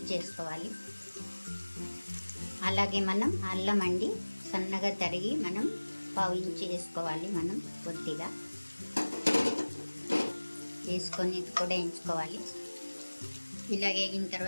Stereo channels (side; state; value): both; inverted; correlation -1.00